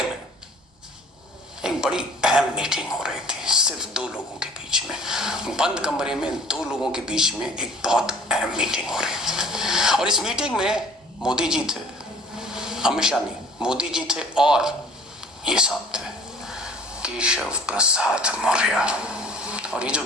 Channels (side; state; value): both; normal; correlation 0.49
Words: में एक बड़ी अहम मीटिंग हो रही थी, सिर्फ 2 लोगों के बीच में, बंद कमरे में 2 लोगों के बीच में एक बहुत अहम मीटिंग हो रही थी। और इस मीटिंग में मोदी जी थे, अमित शाह नहीं, मोदी जी थे, और ये साहब थे केशव प्रसाद मौर्य। और ये जो